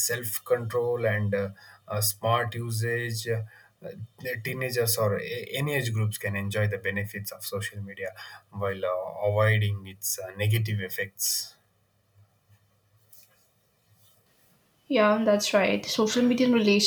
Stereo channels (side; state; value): both; identical; correlation 1.00